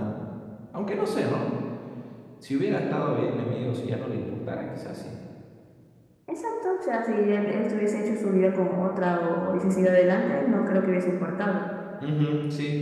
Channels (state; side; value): identical; both; correlation 1.00